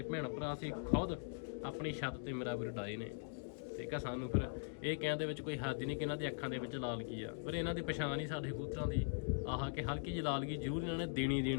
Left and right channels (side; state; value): right; silent; digital silence